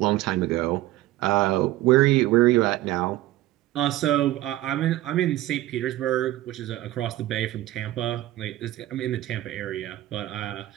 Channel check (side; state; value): left; quieter; 15.6 dB